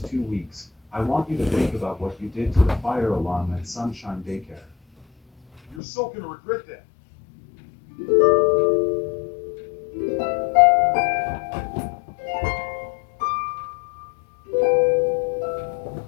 2 weeks, I want you to think about what you did to the fire alarm at Sunshine Daycare. You're so gonna regret that.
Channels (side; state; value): right; drops out; at 5.8 s